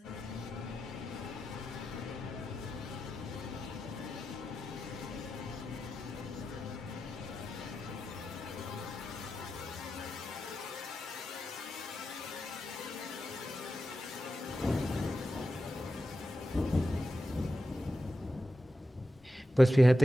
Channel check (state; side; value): normal; both; correlation 0.90